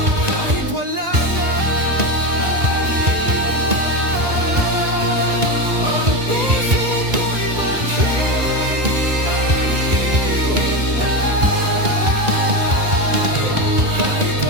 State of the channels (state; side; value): late; left; 1.9 ms